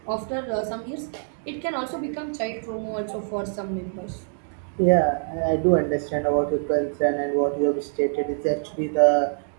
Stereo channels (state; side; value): silent; left; digital silence